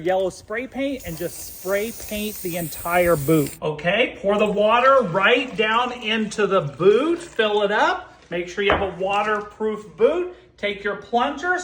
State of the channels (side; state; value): both; identical; correlation 1.00